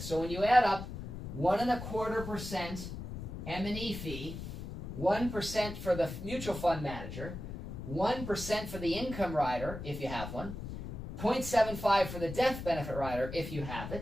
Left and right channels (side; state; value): left; noise; rumble, 8 dB below the sound